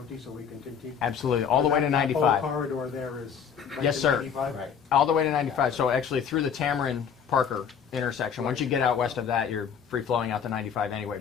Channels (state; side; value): quieter; right; 7.4 dB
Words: so we can continue? Absolutely, all the way to That 95. whole corridor there is right Yes, to sir. 95? Right. All the way to 95. So actually through the Tamarind Parker intersection. Once you get out west of that, you're free flowing out to 95 anyway.